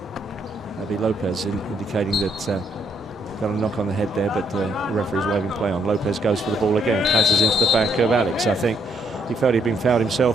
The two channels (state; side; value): normal; both; correlation 0.73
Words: That'd be Lopez indicating that got a knock on the head there, but the referee's waving play on. Lopez goes for the ball again, passes into the back of Alex. I think he felt he'd been fouled